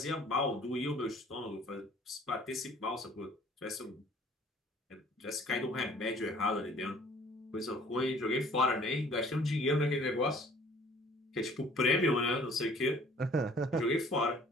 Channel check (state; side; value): normal; both; correlation 0.54